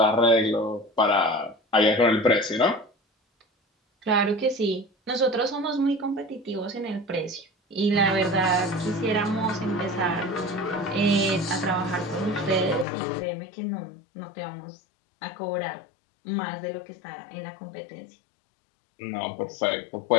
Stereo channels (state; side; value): drops out; right; at 12.9 s